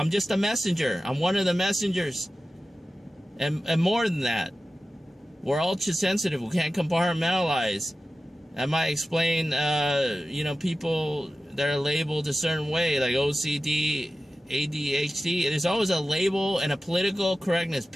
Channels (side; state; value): both; normal; correlation 0.95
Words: just a messenger. I'm one of the messengers. And more than that, we're ultra sensitive. We can't compartmentalize. That might explain, you know, people that are labeled a certain way, like OCD, ADHD. There's always a label and a political correctness,